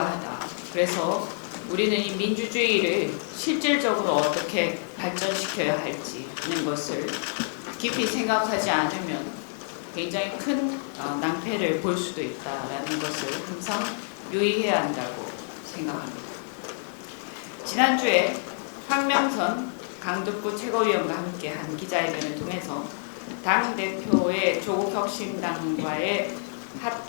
그래서 우리는 이 민주주의를 실질적으로 어떻게 발전시켜야 할지는 것을 깊이 생각하지 않으면 굉장히 큰 낭패를 볼 수도 있다라는 것을 항상 유의해야 한다고 생각합니다. 지난주에 황명선 강북구 최고위원과 함께한 기자회견을 통해서 당대표의 조국혁신당과의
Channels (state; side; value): silent; right; digital silence